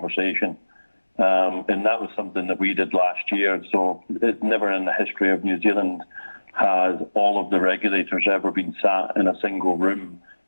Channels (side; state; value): both; inverted; correlation -1.00